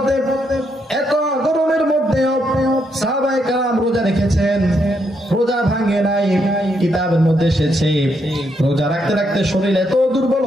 এত গরমের মধ্যেও সাহাবায়ে কেরাম রোজা রেখেছেন, রোজা ভাঙে নাই। কিতাবের মধ্যে এসেছে রোজা রাখতে রাখতে শরীর এত দুর্বল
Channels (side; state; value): both; normal; correlation 0.77